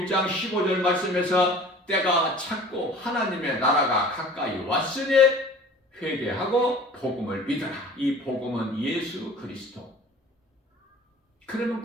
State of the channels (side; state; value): both; normal; correlation 0.45